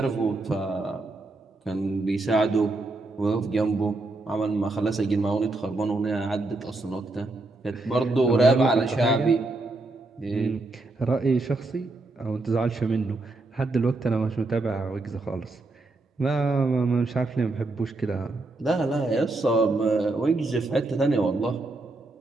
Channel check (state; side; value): quieter; left; 3.1 dB